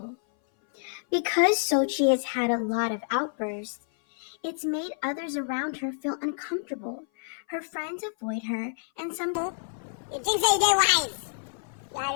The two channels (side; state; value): right; silent; 58 dB below the other